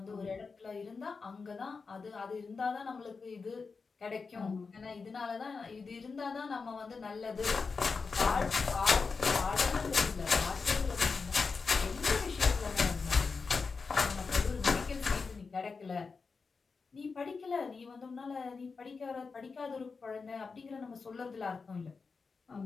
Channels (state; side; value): quieter; right; 4.7 dB